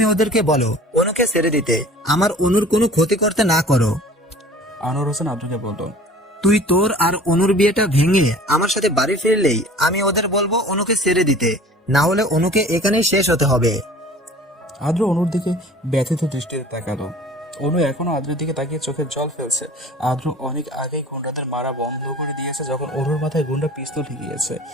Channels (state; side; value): normal; both; correlation 0.46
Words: ওদেরকে বলো অনুকে ছেড়ে দিতে, আমার অনুর কোনো ক্ষতি করতে না করো। আনোয়ার হোসেন আদ্রকে বলল, তুই তোর আর অনুর বিয়েটা ভেঙে আমার সাথে বাড়ি ফিরলেই আমি ওদের বলবো অনুকে ছেড়ে দিতে, না হলে অনুকে এখানেই শেষ হতে হবে। আদ্র অনুর দিকে ব্যথিত দৃষ্টিতে তাকালো। অনু এখনো আদ্রের দিকে তাকিয়ে চোখের জল ফেলছে। আদ্র অনেক আগেই গুন্ডাদের মারা বন্ধ করে দিয়েছে যখন অনুর মাথায় গুন্ডা পিস্তল ঠেকিয়েছে।